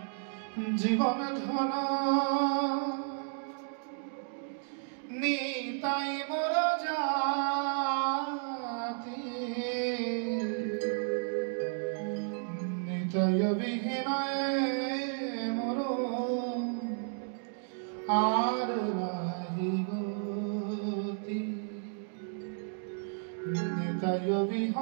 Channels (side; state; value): left; silent; 56 dB below the other